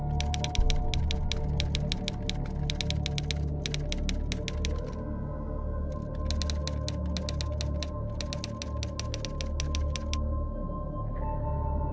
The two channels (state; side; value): identical; both; correlation 1.00